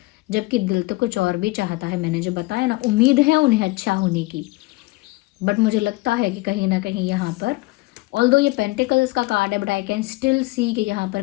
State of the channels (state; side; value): quieter; right; 21.8 dB